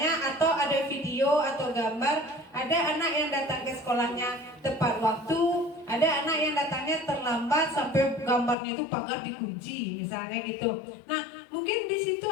atau ada video atau gambar, ada anak yang datang ke sekolahnya tepat waktu, ada anak yang datangnya terlambat sampai gambarnya itu pagar dikunci misalnya gitu. Nah, mungkin di situ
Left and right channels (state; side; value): drops out; right; at 8.6 s